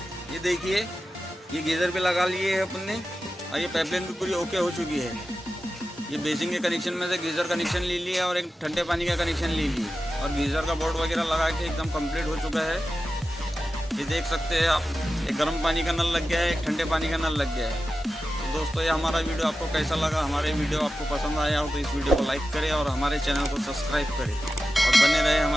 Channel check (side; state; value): both; normal; correlation 0.93